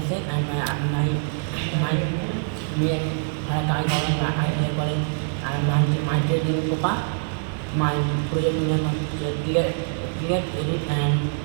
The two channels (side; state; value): left; silent; digital silence